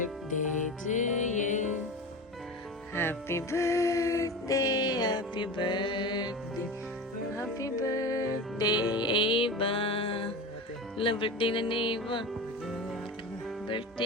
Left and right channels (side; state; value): both; normal; correlation 0.29